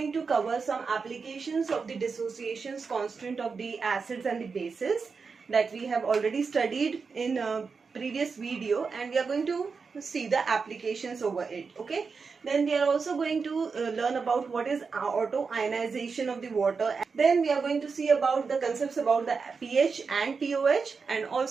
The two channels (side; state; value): left; quieter; 5.1 dB